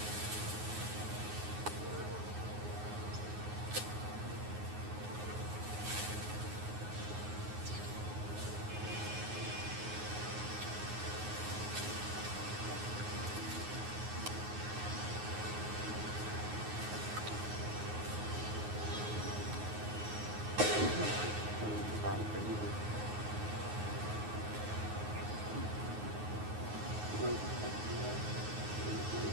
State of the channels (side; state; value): left; late; 9.5 ms